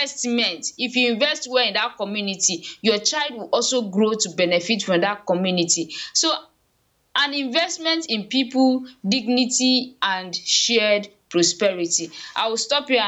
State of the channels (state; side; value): identical; both; correlation 1.00